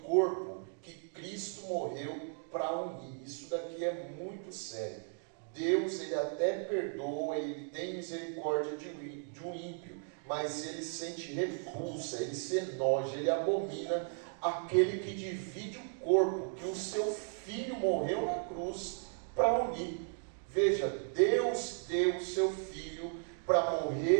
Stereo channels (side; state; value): left; silent; 54 dB below the other